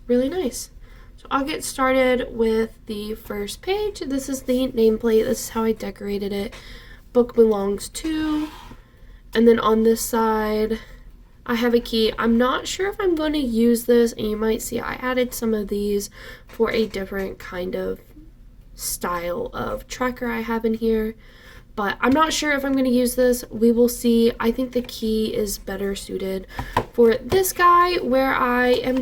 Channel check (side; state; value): both; identical; correlation 1.00